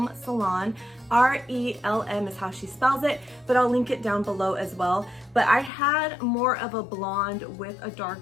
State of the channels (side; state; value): right; drops out; at 5.7 s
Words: Salon. R-E-L-M is how she spells it, but I'll link it down below as well. But I had more of a blonde with a